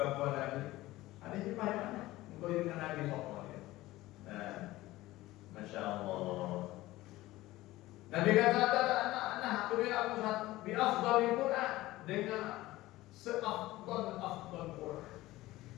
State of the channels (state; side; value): quieter; right; 17.5 dB